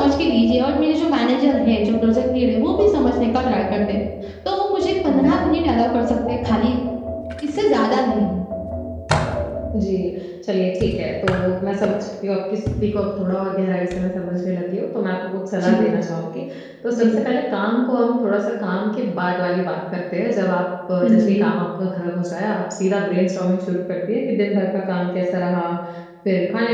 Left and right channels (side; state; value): both; identical; correlation 1.00